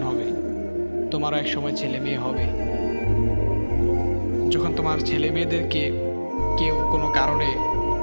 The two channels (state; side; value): inverted; both; correlation -1.00